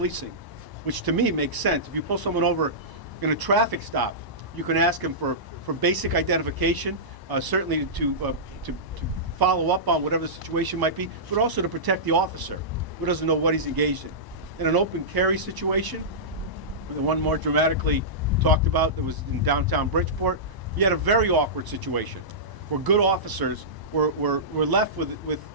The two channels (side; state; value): left; late; 1.0 ms